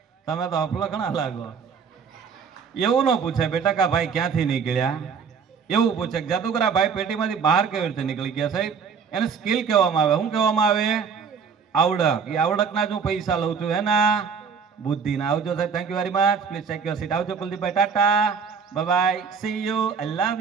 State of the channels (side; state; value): left; quieter; 6.2 dB